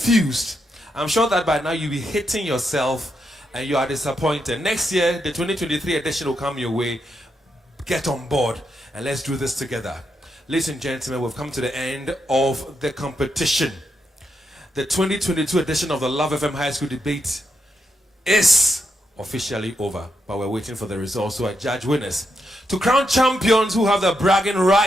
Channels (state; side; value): normal; both; correlation 0.83